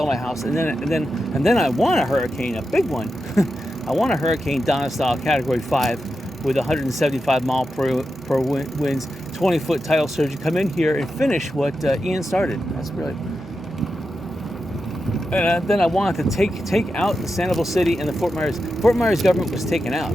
my house, and then I want a hurricane, a big one. I want a hurricane Donna style Category 5 with 175 mile per winds, 20-foot tidal surge. Come in here and finish what Ian started. That's really. And then I wanted to take out the Sanibel City and the Fort Myers government was taken out,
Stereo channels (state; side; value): normal; both; correlation 0.89